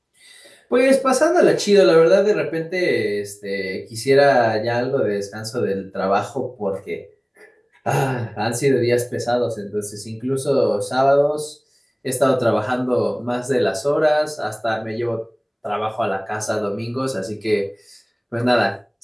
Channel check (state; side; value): identical; both; correlation 1.00